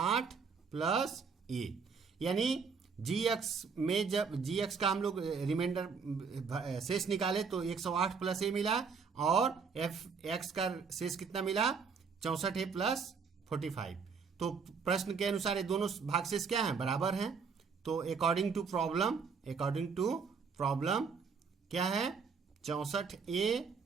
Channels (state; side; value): quieter; left; 5.6 dB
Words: प्लस ए। यानी जी एक्स में जब जी एक्स का हम लोग रिमाइंडर शेष निकाले तो 108 प्लस ए मिला, और एफ एक्स का शेष कितना मिला 64 है प्लस 45। तो प्रश्न के अनुसार ये दोनों भागशेष क्या हैं, बराबर हैं। तो अकॉर्डिंग टू प्रॉब्लम क्या है, 64a